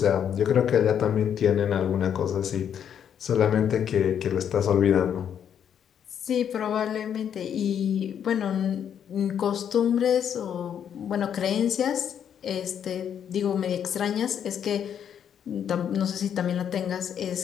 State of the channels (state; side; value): quieter; right; 8.7 dB